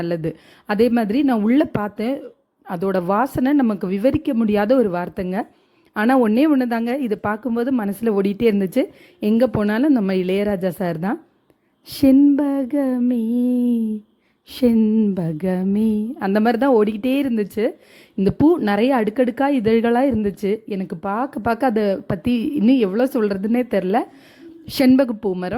அதே மாதிரி நான் உள்ளே பார்த்தேன், அதோட வாசனை நமக்கு விவரிக்க முடியாத ஒரு வார்த்தைங்க. ஆனால் ஒன்று தாங்க, இதை பார்க்கும்போது மனசில் ஓடிட்டே இருந்துச்சு. எங்கே போனாலும் நம்ம இளையராஜா சார் தான். செண்பகமே செண்பகமே அந்த மாதிரி தான் ஓடிக்கிட்டே இருந்துச்சு. இந்த பூ நிறைய அடுக்கடுக்காக இதழ்களாக இருந்துச்சு. எனக்கு பார்க்க அதை பற்றி இன்னும் எவ்வளோ சொல்கிறதுனே தெரில. செண்பகப்பூ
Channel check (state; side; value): identical; both; correlation 1.00